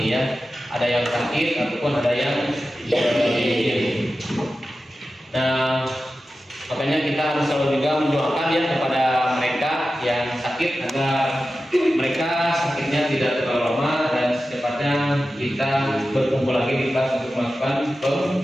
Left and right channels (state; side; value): normal; both; correlation 0.93